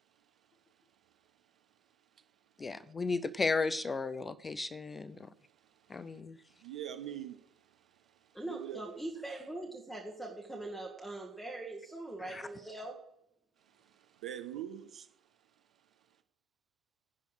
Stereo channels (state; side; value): normal; both; correlation 0.80